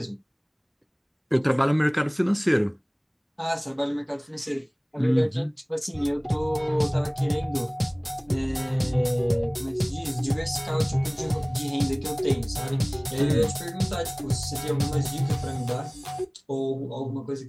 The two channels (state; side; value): identical; both; correlation 1.00